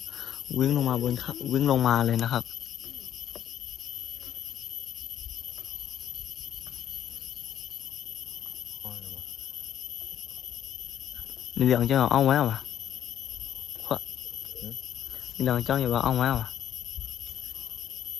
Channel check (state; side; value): quieter; right; 10.4 dB